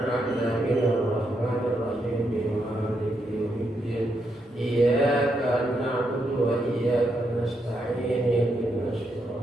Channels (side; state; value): both; normal; correlation 0.80